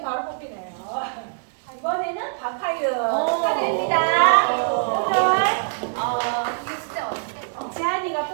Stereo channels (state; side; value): silent; left; 63 dB below the other